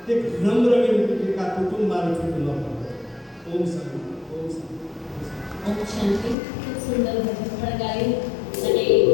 એક નમ્ર વિનંતી કે આ કુટુંબ મારું છૂટું ન પાડતો. ઓમ શાંતિ, ઓમ શાંતિ. ઓમ શાંતિ. ખૂબ સુંદર ભજન પણ ગાયું અને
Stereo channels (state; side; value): drops out; right; at 6.4 s